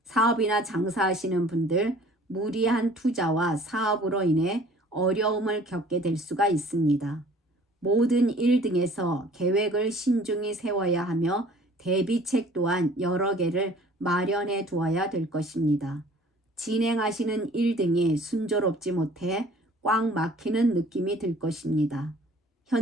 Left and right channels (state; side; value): normal; both; correlation 0.52